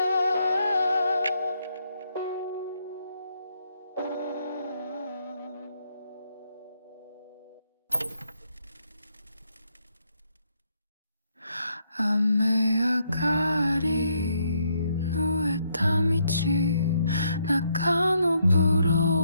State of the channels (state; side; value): inverted; both; correlation -0.75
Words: 雨上がり濡れた道中のブ